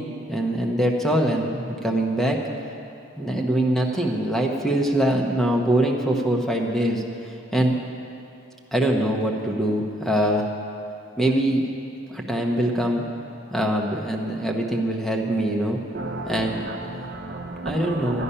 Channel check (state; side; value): normal; both; correlation 0.71